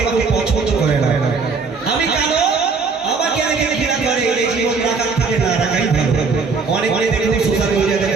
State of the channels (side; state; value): left; quieter; 4.7 dB